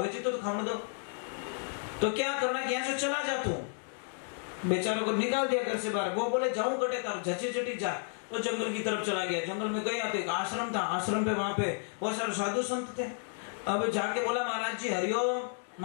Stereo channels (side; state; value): right; silent; 56 dB below the other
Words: जी तो खाने दो तो क्या करना कि यहाँ से चला जा तू बेचारों को निकाल दिया घर से बाहर। वो बोले जाऊं कटे तार झची झटी जा तो जंगल की तरफ चला गया। जंगल में गया तो एक आश्रम था। आश्रम पे वहां पे बहुत सारे साधु संत थे। अब जाके बोला महाराज जी हरिओम।